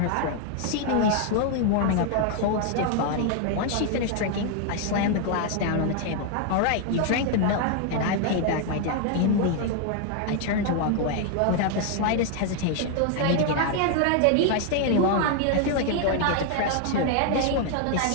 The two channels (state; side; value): different; both; correlation 0.00